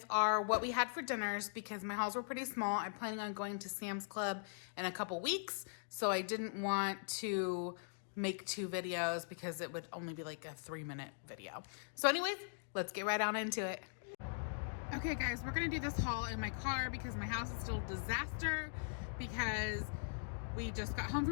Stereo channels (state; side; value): silent; right; digital silence